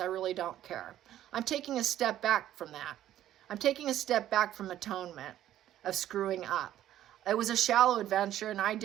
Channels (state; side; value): quieter; left; 12.4 dB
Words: really don't care. I'm taking a step back from that. I'm taking a step back from atonement of screwing up. It was a shallow adventure, and I